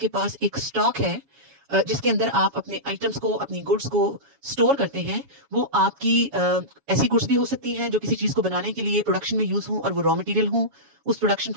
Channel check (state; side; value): late; left; 7.2 ms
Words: पास एक स्टॉक है, जिसके अंदर आप अपने आइटम्स को, अपनी गुड्स को स्टोर करते हैं। वो आपकी ऐसी गुड्स भी हो सकती हैं जो किसी चीज को बनाने के लिए प्रोडक्शन में यूज हो और वो रॉ मटेरियल हो उस प्रोडक्शन